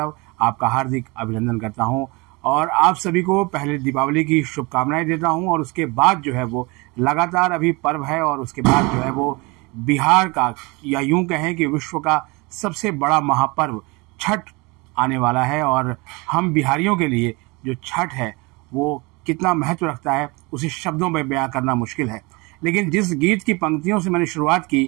आपका हार्दिक अभिनंदन करता हूं और आप सभी को पहले दीपावली की शुभकामनाएं देता हूं। और उसके बाद जो है वो लगातार अभी पर्व है और उसके बाद जो है वो बिहार का या यूं कहें कि विश्व का सबसे बड़ा महापर्व छठ आने वाला है। और हम बिहारियों के लिए जो छठ है वो कितना महत्व रखता है उसे शब्दों में बयां करना मुश्किल है। लेकिन जिस गीत की पंक्तियों से मैंने शुरुआत की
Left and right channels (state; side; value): quieter; left; 26.4 dB